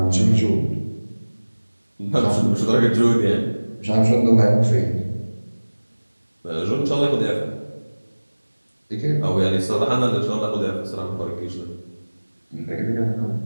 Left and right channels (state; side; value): inverted; both; correlation -1.00